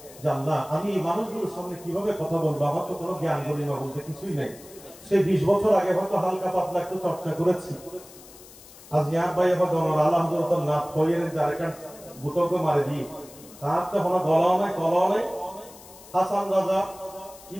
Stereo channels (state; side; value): noise; left; hiss, 20 dB below the sound